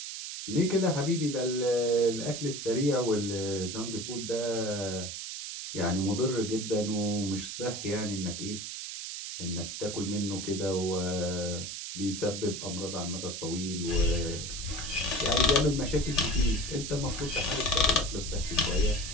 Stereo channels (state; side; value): noise; right; hiss, 7 dB below the sound